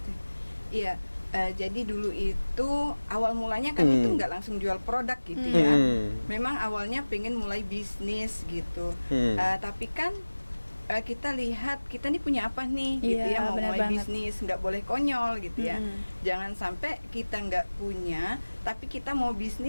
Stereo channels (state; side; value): inverted; both; correlation -1.00